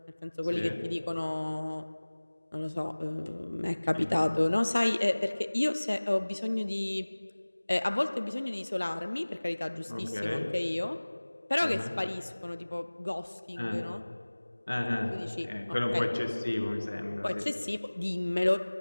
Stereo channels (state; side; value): inverted; both; correlation -1.00